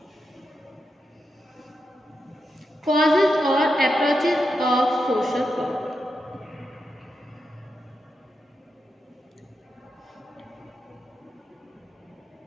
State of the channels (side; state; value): both; normal; correlation 0.86